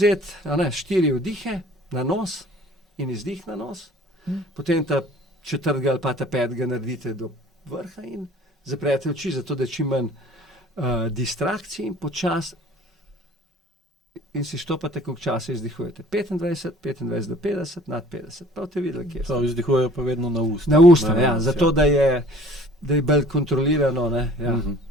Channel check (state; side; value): normal; both; correlation 0.51